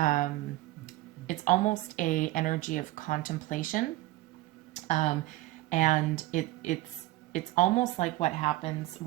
it's almost a energy of contemplation, and it's almost like what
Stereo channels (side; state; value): left; quieter; 17.6 dB